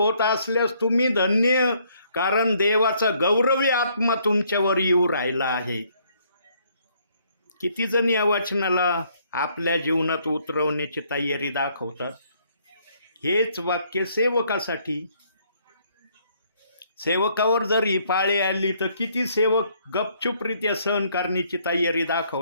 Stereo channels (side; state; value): both; inverted; correlation -0.67